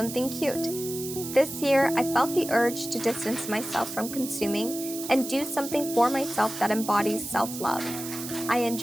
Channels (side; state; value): right; noise; hiss, 9 dB below the sound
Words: cute. This year, I felt the urge to distance myself from consuming and do something for myself that embodies self-love. I